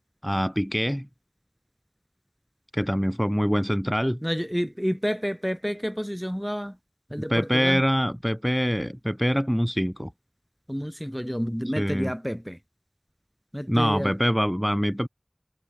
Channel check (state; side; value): identical; both; correlation 1.00